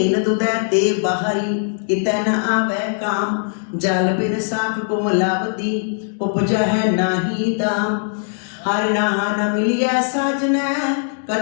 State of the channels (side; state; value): right; silent; digital silence